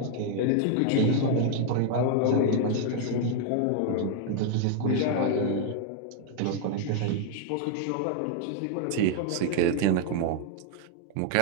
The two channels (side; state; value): both; different; correlation 0.00